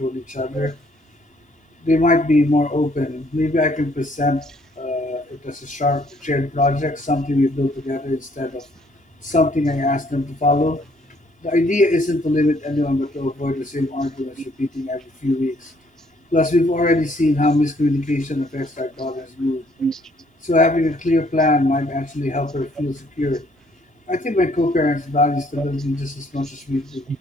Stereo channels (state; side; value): normal; both; correlation 0.65